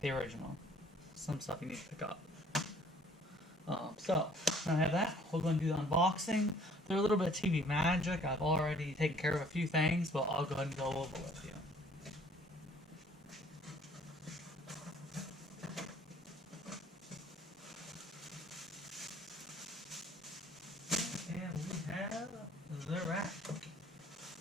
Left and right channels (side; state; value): both; normal; correlation 0.57